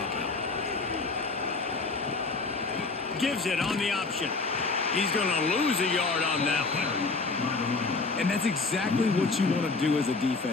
Gives it on the option. He's going to lose a yard on that one. And that's exactly what you want to do as a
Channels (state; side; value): quieter; right; 3.9 dB